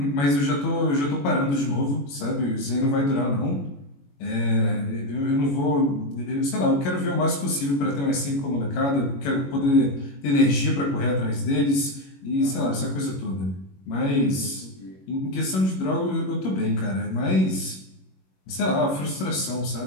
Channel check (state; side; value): late; right; 21 ms